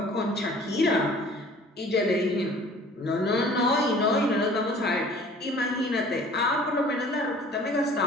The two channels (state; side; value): normal; both; correlation 0.49